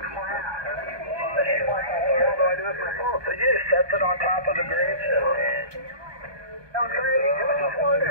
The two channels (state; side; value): late; left; 1.2 ms